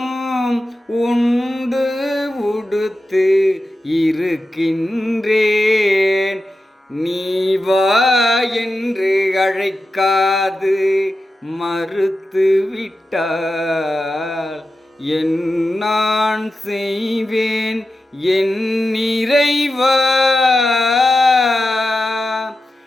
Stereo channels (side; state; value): both; normal; correlation 0.91